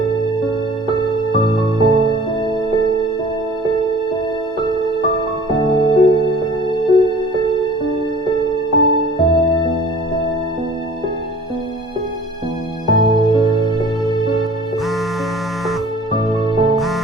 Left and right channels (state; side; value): normal; both; correlation 0.47